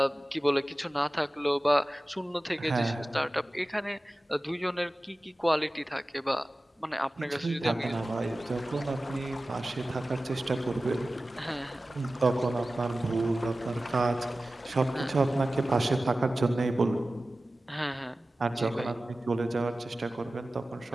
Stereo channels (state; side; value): normal; both; correlation 0.96